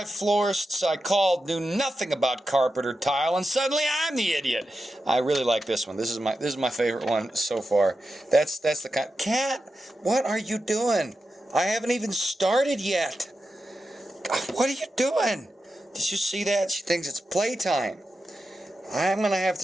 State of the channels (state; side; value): normal; both; correlation 0.90